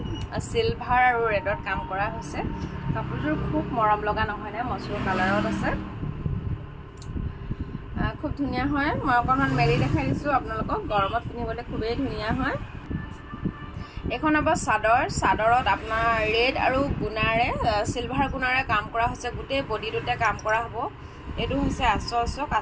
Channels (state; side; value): identical; both; correlation 1.00